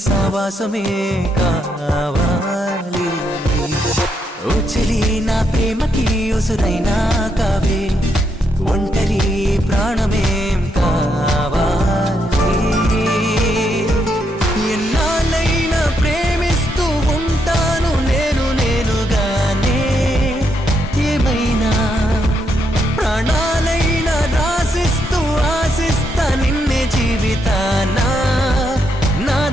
సావాసమే కావాలి ఓ చెలి నా ప్రేమకి ఉసురైనా కావే ఒంటరి ప్రాణమేం కావాలి ఎన్నాళ్ళైనా ప్రేమిస్తూ ఉంటాను నేనుగానే ఏమైనా ప్రాణాలైనా రాసిస్తూ ఆశిస్తా నిన్నే జీవితానా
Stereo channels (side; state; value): both; normal; correlation 0.78